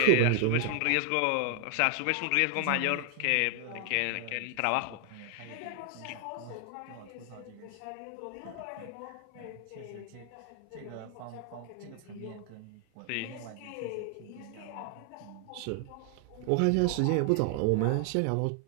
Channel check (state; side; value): different; both; correlation 0.00